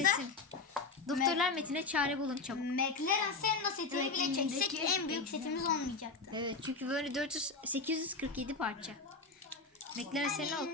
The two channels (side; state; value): right; quieter; 4.0 dB